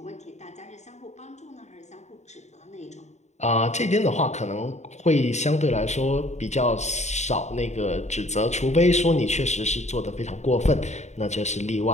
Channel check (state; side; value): late; right; 0.33 ms